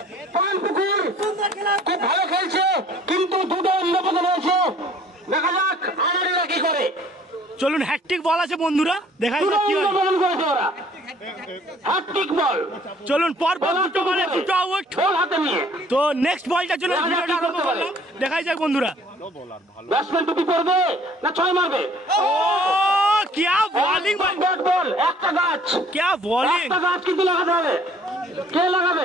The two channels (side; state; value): both; normal; correlation 0.56